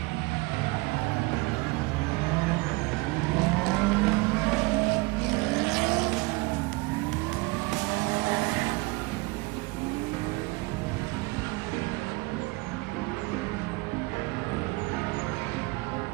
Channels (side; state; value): left; quieter; 23.9 dB